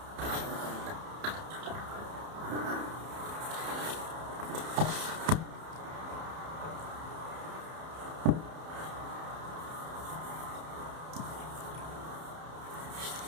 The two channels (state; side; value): late; left; 31 ms